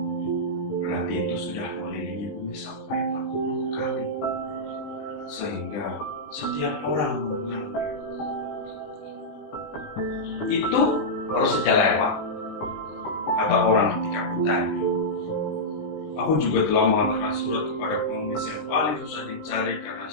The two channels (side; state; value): right; late; 20 ms